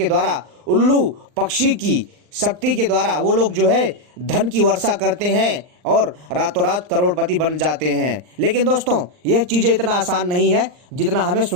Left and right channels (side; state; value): left; late; 39 ms